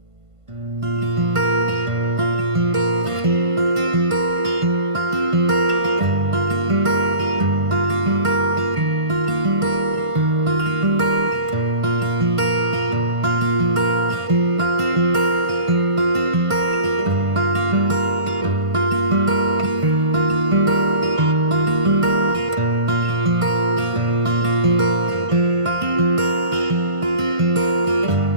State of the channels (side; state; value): left; late; 1.5 ms